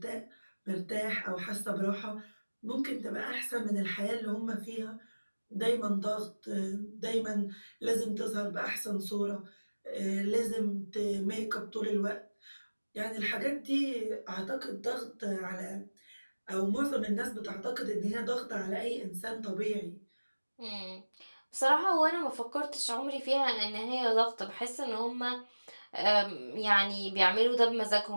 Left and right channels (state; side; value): inverted; both; correlation -1.00